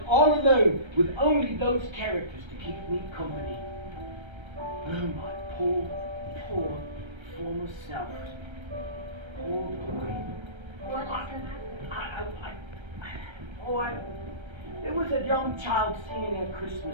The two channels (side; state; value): left; late; 1.3 ms